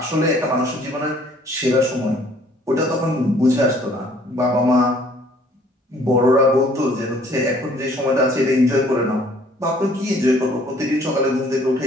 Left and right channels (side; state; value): both; normal; correlation 0.58